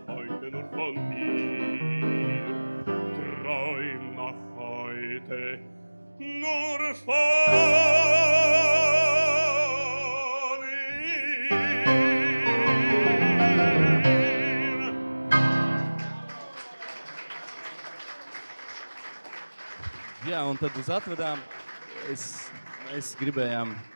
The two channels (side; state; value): both; inverted; correlation -1.00